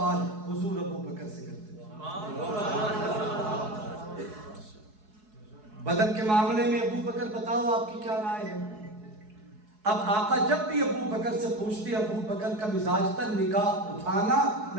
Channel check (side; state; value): left; late; 4.7 ms